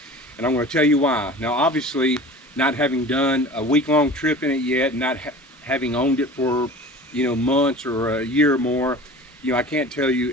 and I'm going to tell you why. Now, obviously, not having done a week-long trip in it yet, not having owned it for months or a year or more, I can't tell you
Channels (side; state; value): both; normal; correlation 0.40